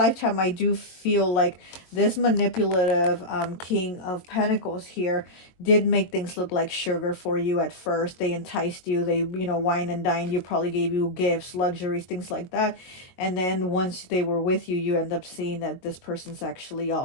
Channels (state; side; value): late; right; 22 ms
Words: I do feel like this manipulative King of Pentacles here did make things look like sugar for you at first. They enticed you, they, you know, wine and dined you, probably gave you gifts, luxuries, things like that. And then once they were with you, you end up seeing that this person's actually